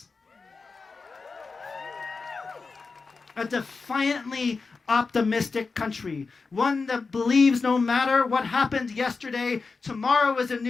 A defiantly optimistic country, one that believes no matter what happened yesterday, tomorrow is a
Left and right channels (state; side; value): quieter; right; 4.4 dB